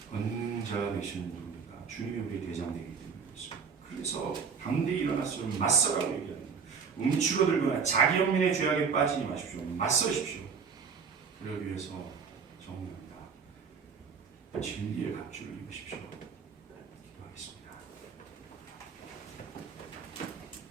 권능 제자가 되시는 누굽니까? 주님이 우리의 대장 되기 때문에 그렇습니다. 그래서 담대히 일어나서 맞서라고 얘기합니다. 움츠러들거나 자기 영민의 죄악에 빠지지 마십시오. 맞서십시오. 그러기 위해서 정리합니다. 진리의 갑주를 입으십시오.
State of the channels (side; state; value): left; quieter; 6.0 dB